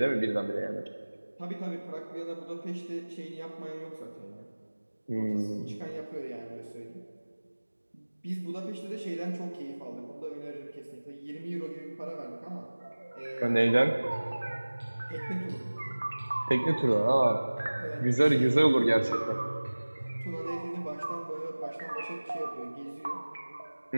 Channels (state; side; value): inverted; both; correlation -1.00